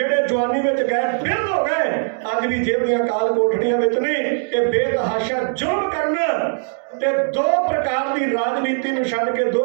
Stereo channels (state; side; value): silent; left; digital silence